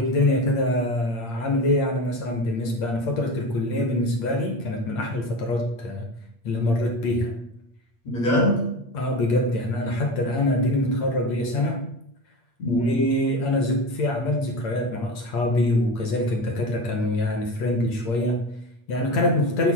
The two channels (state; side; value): late; right; 8.6 ms